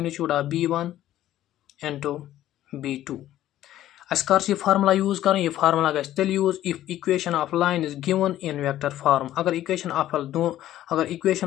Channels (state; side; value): quieter; right; 13.2 dB